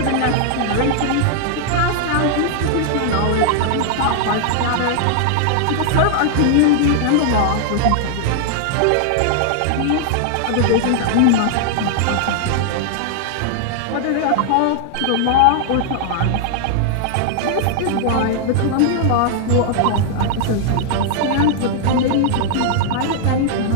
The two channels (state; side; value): different; both; correlation 0.00